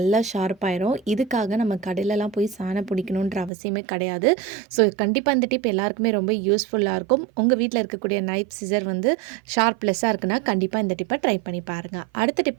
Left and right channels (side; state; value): left; drops out; at 3.5 s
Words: ஷார்ப் ஆயிரும். இதுக்காக நம்ம கடையிலலாம் போய் சாணம் பிடிக்கணுன்ற அவசியமே கிடையாது. ஸோ கண்டிப்பாக இந்த டிப் எல்லாருக்குமே ரொம்ப யூஸ்ஃபுல்லாக இருக்கும். உங்கள் வீட்டில் இருக்கக்கூடிய நைஃப் சிசர் வந்து ஷார்ப்லெஸ்ஸாக இருக்குன்னா கண்டிப்பாக இந்த டிப்பை ட்ரை பண்ணி பாருங்கள். அடுத்த